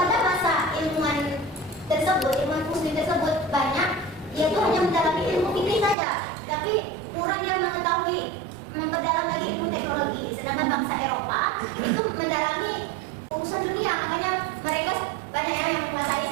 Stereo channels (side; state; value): left; drops out; at 6.0 s